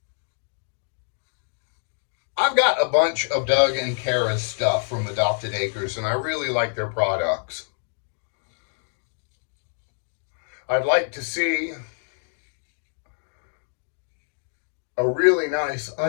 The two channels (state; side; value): silent; right; digital silence